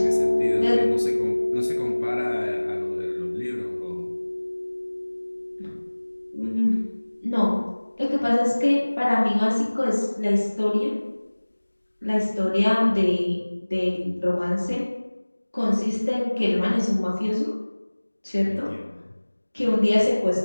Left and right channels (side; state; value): both; inverted; correlation -1.00